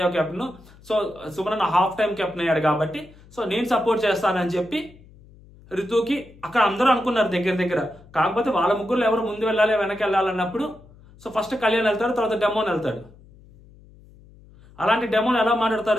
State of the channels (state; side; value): noise; left; hum, 24 dB below the sound